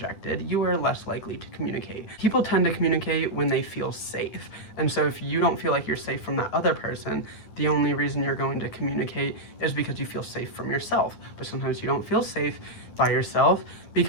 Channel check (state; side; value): late; right; 10 ms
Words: you are less likely to communicate. People tend to communicate when they feel safe. And so if you don't feel like you're safe from that other person, the only reason you're going to communicate is because you feel safe from yourself. But sometimes you don't feel safe by yourself